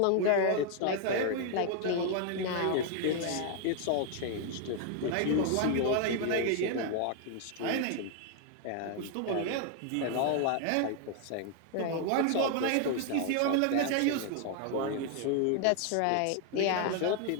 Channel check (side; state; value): both; different; correlation 0.00